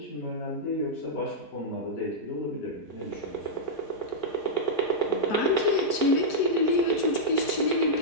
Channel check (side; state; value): right; late; 4.5 ms